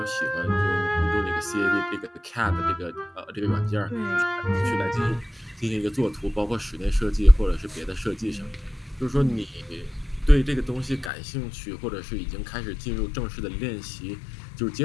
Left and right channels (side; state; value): right; drops out; at 11.1 s